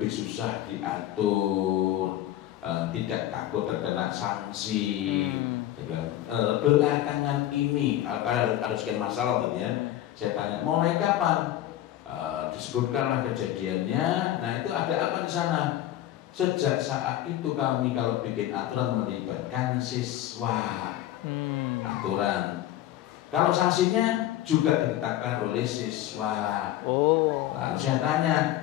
susah diatur, tidak takut terkena sanksi. Saya bilang belakangan ini ada sekian masalah gitu ya. Saya tanya mulai kapan? Disebutkanlah kejadiannya. Nah itu ada apa di sana? Sejak saat itu kami kalau bikin aturan melibatkan siswa. Aturan. Kalau sanksinya juga ditetapkan oleh siswa. Lalu saya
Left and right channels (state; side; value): quieter; right; 13.3 dB